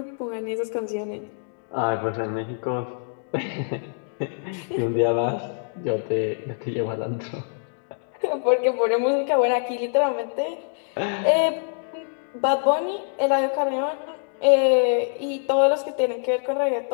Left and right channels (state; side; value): silent; right; digital silence